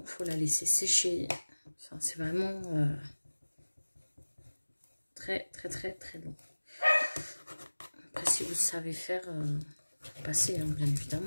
Il faut la laisser sécher. Enfin, c'est vraiment très long. Après, si vous savez faire, passer, hein, bien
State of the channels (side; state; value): both; inverted; correlation -1.00